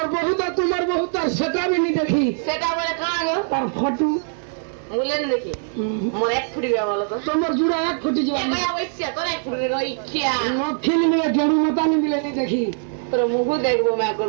तार सेटा भी नहीं देखी সেটা বলে কাঁ গো तार फोटो মুলেন দেখি মোর এক ফুটি গয়া বলো তো तुम्हार जुड़ा एक फुटी जो গয়া ওইছিয়া তোর এক ফুটি গই খিয়া फिल्म में जड़ू मता नहीं मिले नहीं देखी তোর মুখ দেখবো মে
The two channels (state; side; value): silent; left; digital silence